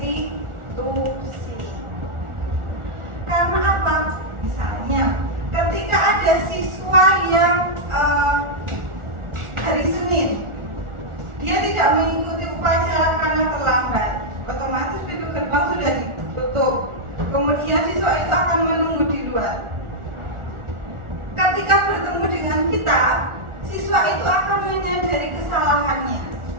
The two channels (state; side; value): late; left; 1.4 ms